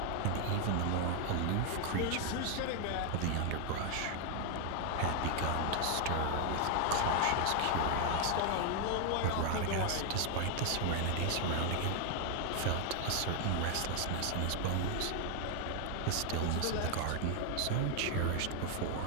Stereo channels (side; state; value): both; different; correlation 0.00